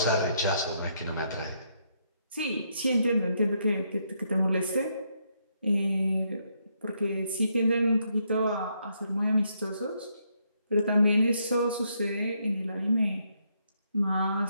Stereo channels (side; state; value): both; inverted; correlation -0.76